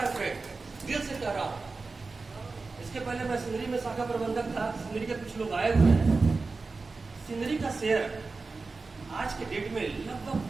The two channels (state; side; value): quieter; left; 4.0 dB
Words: फ्रेंड, दिल से कह रहा हूँ। इसके पहले मैं सिंदरी में शाखा प्रबंधक था, सिंदरी के कुछ लोग आए हुए हैं। सिंदरी का शेयर आज के डेट में लगभग